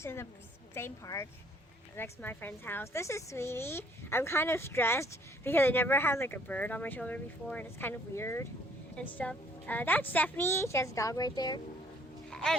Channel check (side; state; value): both; normal; correlation 0.61